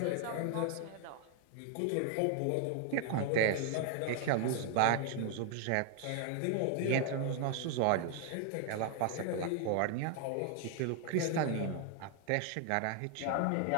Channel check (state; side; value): different; both; correlation 0.00